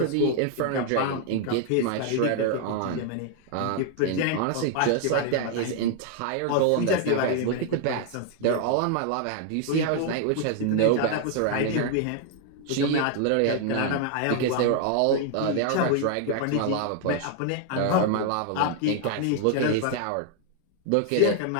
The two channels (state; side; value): different; both; correlation 0.00